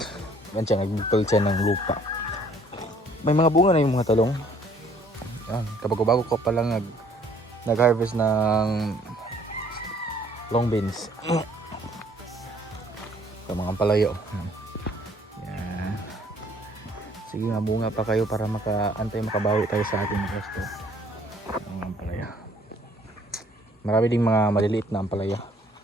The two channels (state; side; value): normal; both; correlation 0.60